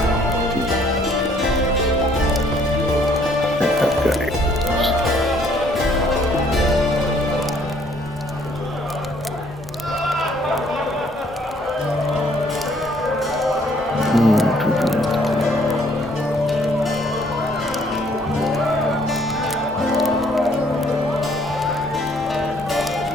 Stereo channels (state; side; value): normal; both; correlation 0.63